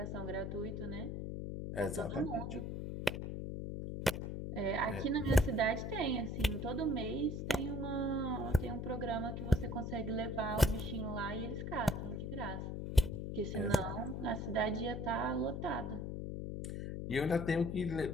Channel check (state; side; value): noise; left; hum, 4 dB below the sound